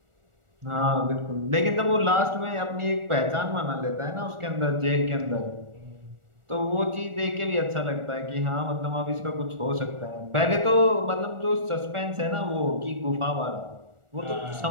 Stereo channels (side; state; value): left; late; 1.4 ms